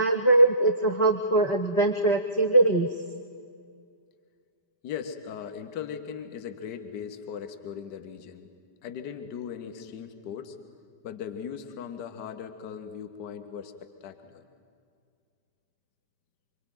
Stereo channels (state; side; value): late; right; 5.1 ms